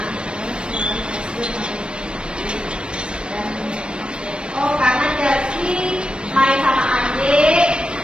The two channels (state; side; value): late; left; 0.055 ms